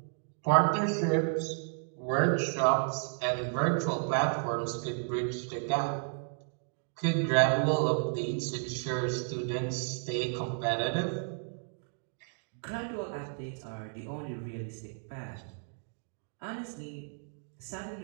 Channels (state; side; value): silent; left; 56 dB below the other